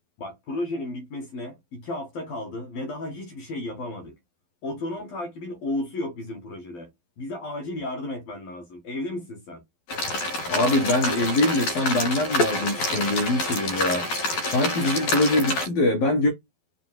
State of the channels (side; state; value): right; late; 12 ms